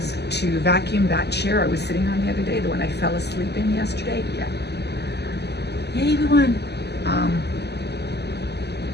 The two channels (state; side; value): late; right; 0.49 ms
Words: to vacuum that chair I was sitting on the other day, the one I fell asleep in yesterday. Yeah. Yay, everyone.